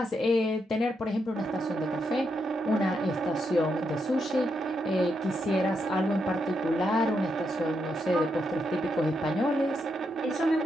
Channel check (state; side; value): normal; both; correlation 0.81